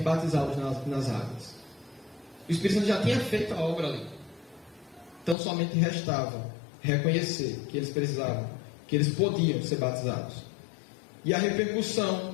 batizá-los nas águas. O Espírito Santo já tinha feito a obra ali. Tão somente restava reconhecer que eles precisavam, que eles podiam ser batizados. E a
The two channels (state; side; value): drops out; right; at 5.4 s